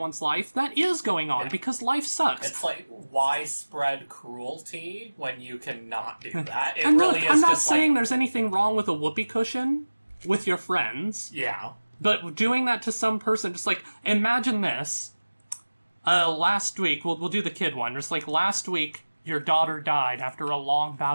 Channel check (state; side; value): inverted; both; correlation -1.00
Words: life that is going on because life sucks. It's like, why spread cruelty when you cannot do that? And look, I'm not saying there's anything wrong with a whoopee cushion with your friends. Yeah. But doing that to some person, just like, imagine this. Last week, we'll do the kid one. Just like, last week, your daughter died after a long